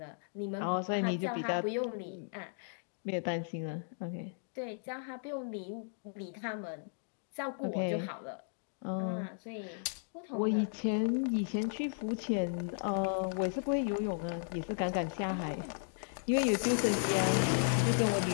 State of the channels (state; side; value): silent; right; digital silence